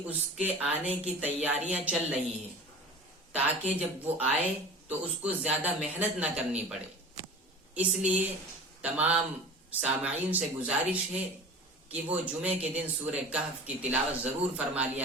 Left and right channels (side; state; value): both; normal; correlation 0.38